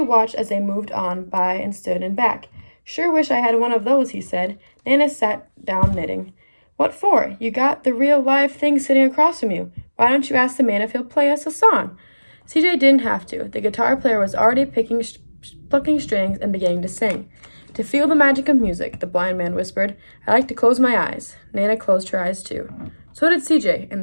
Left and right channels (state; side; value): inverted; both; correlation -1.00